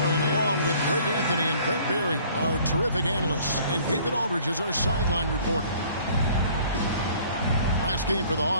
along with Greg Anthony and Brent Barry, our terrific analysts, and David Aldridge is our sideline reporter. Last game for the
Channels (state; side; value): inverted; both; correlation -0.54